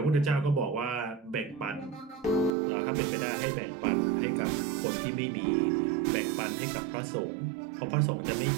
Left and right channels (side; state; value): left; drops out; at 2.6 s